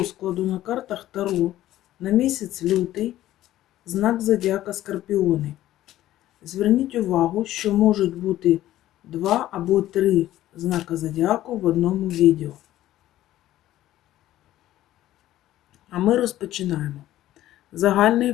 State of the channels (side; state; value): right; quieter; 14.1 dB